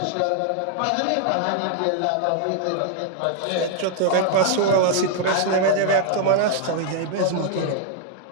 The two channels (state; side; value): different; both; correlation 0.00